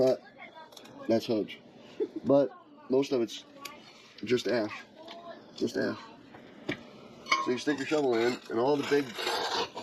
that's hudge. But most of it's just ash. Just ash. So you stick your shovel in, and all the big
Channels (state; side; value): identical; both; correlation 1.00